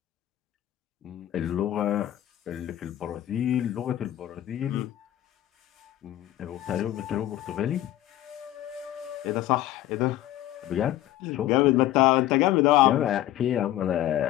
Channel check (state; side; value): quieter; right; 13.8 dB